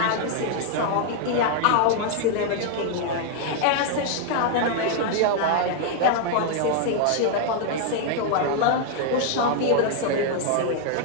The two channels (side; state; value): both; different; correlation 0.00